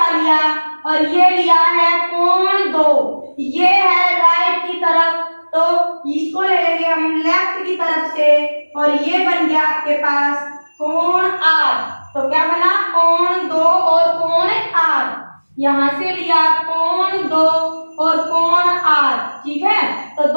लिया और ये लिया है कोण 2, ये है राइट की तरफ, तो इसको ले लेंगे हम लेफ्ट की तरफ से, और ये बन गया आपके पास कोण 8। तो क्या बना? कोण 2 और कोण 8। यहां से लिया कोण 2 और कोण 8, ठीक है। तो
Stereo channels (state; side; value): inverted; both; correlation -1.00